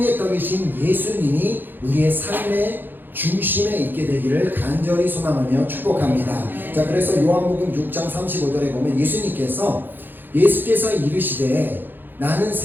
떡이신 예수님이 우리의 삶의 중심에 있게 되기를 간절히 소망하며 축복합니다. 자, 그래서 요한복음 6장 35절에 보면 예수께서 이르시되 나는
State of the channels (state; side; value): late; left; 0.093 ms